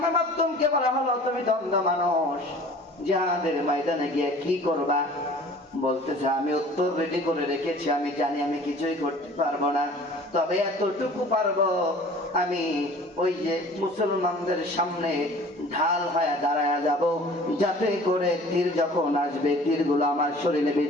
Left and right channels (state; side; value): normal; both; correlation 0.47